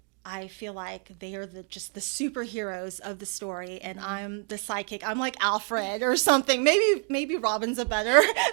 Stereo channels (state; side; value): quieter; left; 38.6 dB